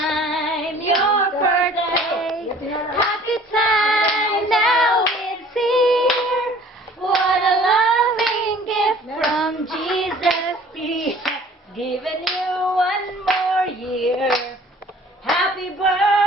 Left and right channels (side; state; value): both; normal; correlation 0.51